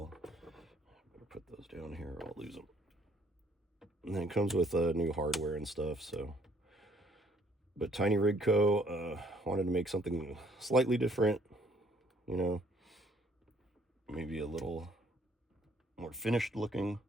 Better put those down here or I'll lose them. And then it comes with new hardware and stuff. So, but Tiny Rig Co. Wanted to make something slightly different, you know, maybe a little more finished looking.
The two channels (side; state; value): both; normal; correlation 0.63